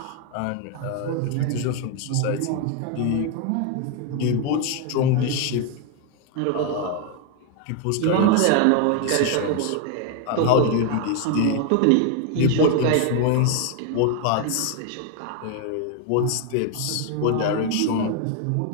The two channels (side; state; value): both; different; correlation 0.01